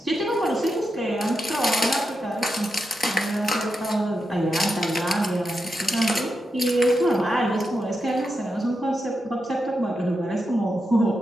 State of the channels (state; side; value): normal; both; correlation 0.87